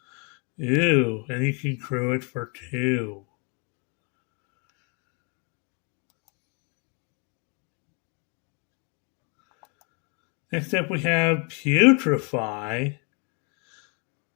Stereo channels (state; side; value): quieter; right; 34.7 dB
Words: Ew, and you can crew it for 2. Next up, we have Putrefy.